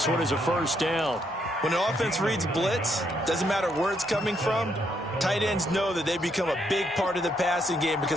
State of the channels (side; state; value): both; normal; correlation 0.75